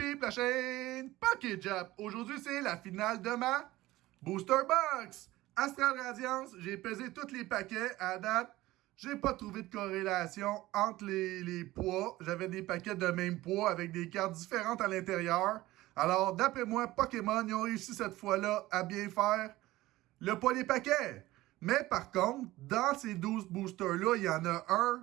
la chaîne Poké Jap. Aujourd'hui, c'est la finale de ma Booster Box. Astral Radiance, j'ai pesé tous les paquets à date. J'ai pas trouvé de corrélation entre les poids. J'avais des paquets de même poids avec des cartes différentes à l'intérieur. Alors, d'après moi, Pokémon, ils ont réussi cette fois-là à bien faire le poids des paquets. Mais par contre, dans ces 12 boosters-là, il y en a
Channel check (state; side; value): quieter; left; 17.4 dB